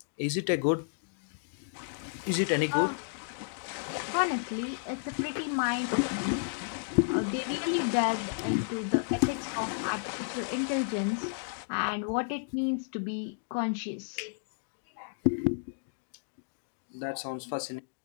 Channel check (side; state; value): right; silent; digital silence